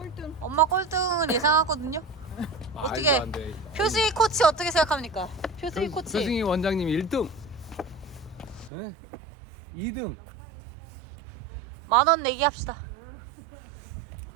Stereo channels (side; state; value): left; drops out; at 8.7 s